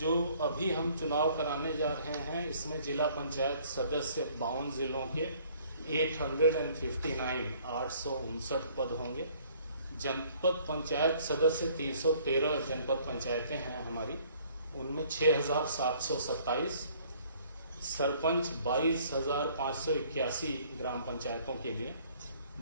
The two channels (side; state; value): both; inverted; correlation -0.59